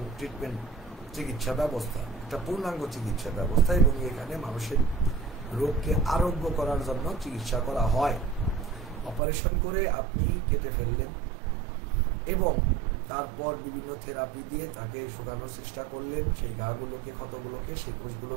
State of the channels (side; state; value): left; drops out; at 9.2 s